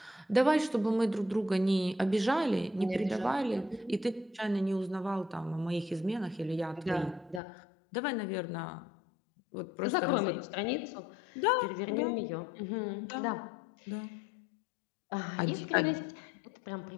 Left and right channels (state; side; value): drops out; right; at 7.4 s